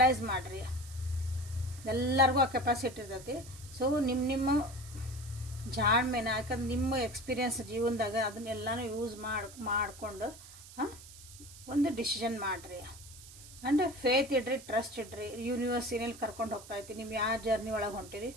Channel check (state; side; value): noise; right; hiss, 17 dB below the sound